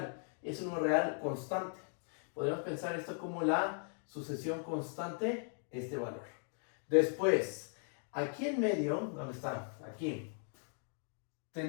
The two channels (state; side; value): silent; right; 52 dB below the other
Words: es un número real constante. Podríamos pensar esto como la sucesión constante, este valor. Después, aquí en medio, ¿dónde está? Aquí,